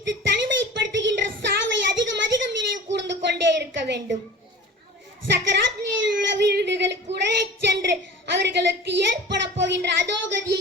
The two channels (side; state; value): both; normal; correlation 0.39